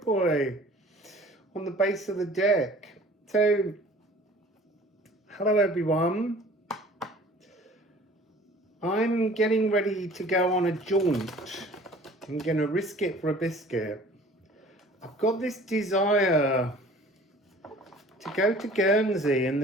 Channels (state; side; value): normal; both; correlation 0.49